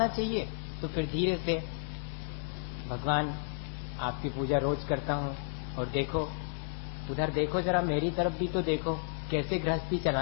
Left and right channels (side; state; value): right; silent; digital silence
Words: चाहिए। तो फिर धीरे से भगवान आपकी पूजा रोज करता हूँ, और देखो उधर देखो, जरा मेरी तरफ भी तो देखो कैसे गृहस्थी